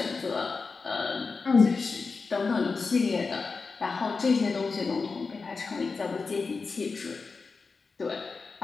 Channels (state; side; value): quieter; right; 4.5 dB